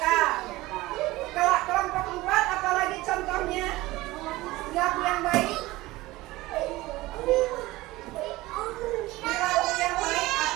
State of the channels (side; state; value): left; quieter; 19.1 dB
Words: Kalau kelompok 4, apalagi contohnya? Perilaku yang baik. Perilaku yang baik